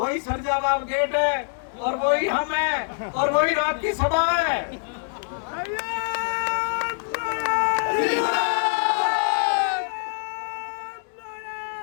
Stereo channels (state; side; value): silent; right; digital silence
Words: सरजाबाद गेट है, और वही हम है, और वही रात की सभा है।